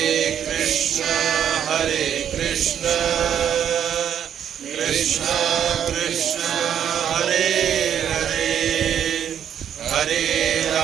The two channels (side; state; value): left; quieter; 9.2 dB